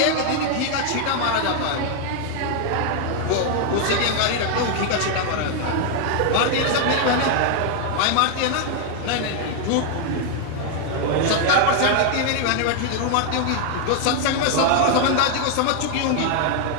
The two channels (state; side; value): different; both; correlation 0.00